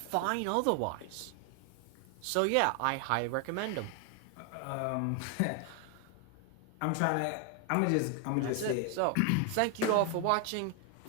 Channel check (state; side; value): different; both; correlation 0.01